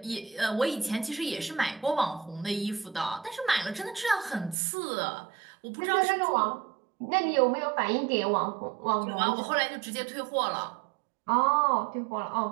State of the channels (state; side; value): drops out; left; at 4.5 s